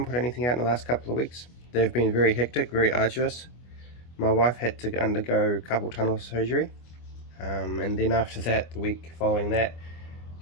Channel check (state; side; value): late; right; 25 ms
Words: put anything out in the last couple of weeks. They've been very hectic, very arduous. My wife had to undergo carpal tunnel surgery, and then after that, the week following that,